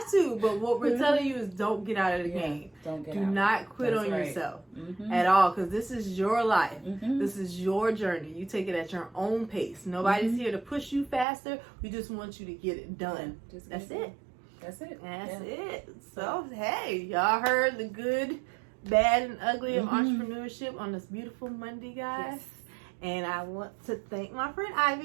to. But what we're telling you is don't get out of the game. Don't get Do out. not quit That's on right. yourself at all, because this is your life. This is your journey. You take it at your own pace. Nobody's here to push you faster. We just want you to get it done. That's it. That's it. That's it. So, hey, y'all heard the good, bad, and ugly of entrepreneurship on this beautiful Monday, guys. Yes. And I want to thank my friend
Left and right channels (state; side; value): drops out; left; at 11.2 s